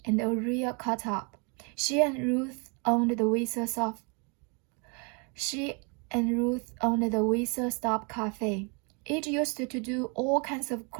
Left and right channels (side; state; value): left; quieter; 34.1 dB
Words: and a real cut-up. She and Ruth owned the Whistle Stop Cafe. It used to do all kinds of